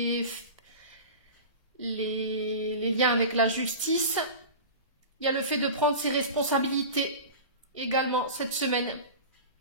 liens avec la justice. Il y a le fait de prendre ses responsabilités également cette semaine.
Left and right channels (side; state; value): both; inverted; correlation -0.32